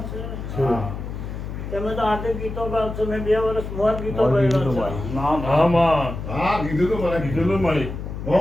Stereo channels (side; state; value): left; noise; hum, 7 dB below the sound